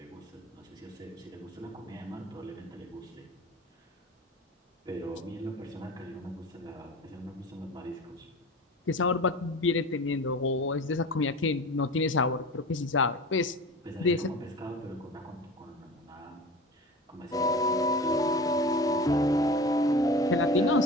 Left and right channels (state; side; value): normal; both; correlation 0.35